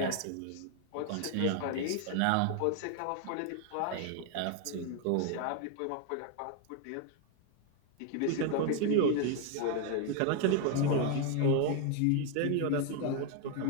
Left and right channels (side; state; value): both; different; correlation 0.00